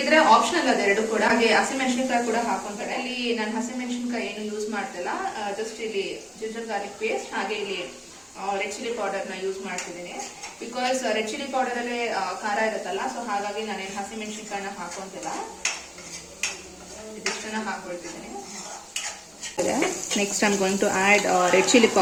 ಆಪ್ಷನಲ್ ಅದೆರಡು ಕೂಡ. ಹಾಗೆ ಹಸಿಮೆಣಸಿನಕಾಯಿ ಕೂಡ ಹಾಕೊಂತಾರೆ. ಇಲ್ಲಿ ನಾನು ಹಸಿಮೆಣಸಿನಕಾಯಿ ಏನು ಯೂಸ್ ಮಾಡ್ತಿಲ್ಲ. ಜಸ್ಟ್ ಇಲ್ಲಿ ಜಿಂಜರ್ ಗಾರ್ಲಿಕ್ ಪೇಸ್ಟ್ ಹಾಗೆ ಇಲ್ಲಿ ರೆಡ್ ಚಿಲ್ಲಿ ಪೌಡರ್ ನ ಯೂಸ್ ಮಾಡ್ತಿದ್ದೀನಿ. ಬಿಕಾಸ್ ರೆಡ್ ಚಿಲ್ಲಿ ಪೌಡರ್ ಅಲ್ಲೇ ಖಾರ ಇರುತ್ತಲ್ಲ. ಸೊ ಹಾಗಾಗಿ ನಾನೇನು ಹಸಿಮೆಣಸಿನಕಾಯಿನ ಹಾಕೊಂತಿಲ್ಲ, ಇದಿಷ್ಟನ್ನ ಹಾಕೊಳ್ತಿದ್ದೀನಿ. Next I am going to add red chilli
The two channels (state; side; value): identical; both; correlation 1.00